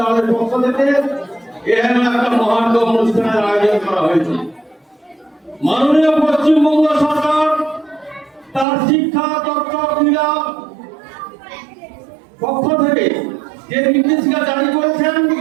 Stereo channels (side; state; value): left; drops out; at 8.7 s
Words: পক্ষ থেকে এখানে একটা মহান অনুষ্ঠানের আয়োজন করা হয়েছে। মাননীয় পশ্চিমবঙ্গ সরকার তার শিক্ষা তথ্য ক্রীড়া পক্ষ থেকে যে নির্দেশিকা জারি করেছেন